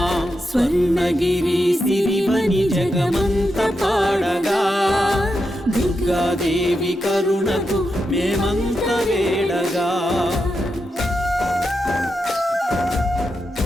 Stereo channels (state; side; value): normal; both; correlation 0.86